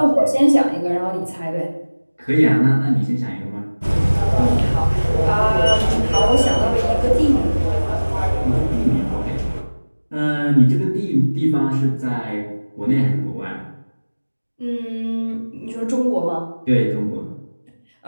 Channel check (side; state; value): both; inverted; correlation -1.00